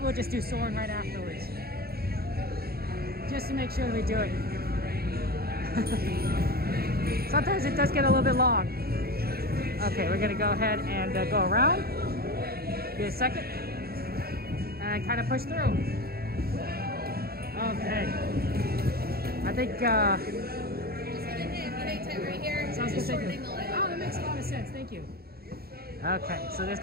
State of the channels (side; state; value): left; late; 0.45 ms